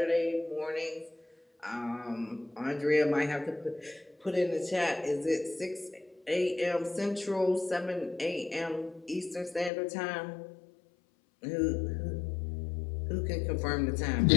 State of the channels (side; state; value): right; drops out; at 9.7 s